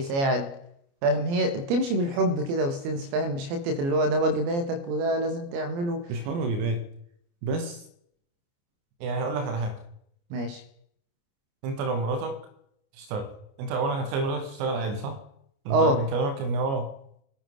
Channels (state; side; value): late; left; 29 ms